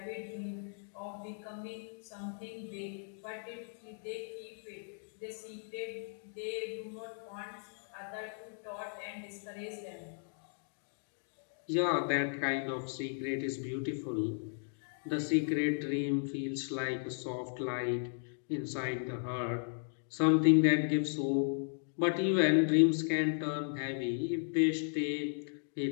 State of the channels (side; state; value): right; silent; digital silence